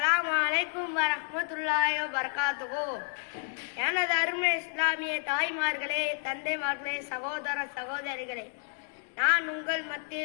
அலைக்கும் வரஹ்மத்துல்லாஹி வபரகாத்துஹு. எனது அருமை இஸ்லாமிய தாய்மார்களே, தந்தைமார்களே, சகோதர சகோதரிகளே, நான் உங்கள்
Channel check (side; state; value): right; silent; 57 dB below the other